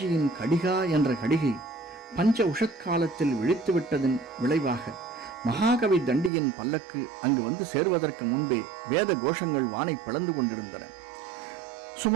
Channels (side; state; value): left; drops out; at 6.3 s